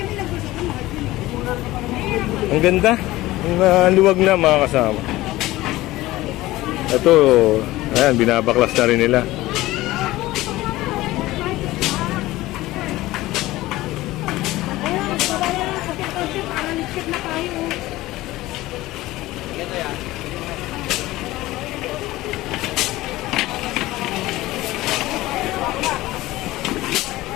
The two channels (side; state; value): right; quieter; 17.7 dB